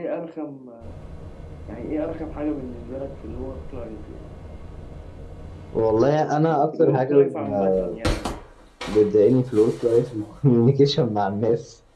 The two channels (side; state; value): both; identical; correlation 1.00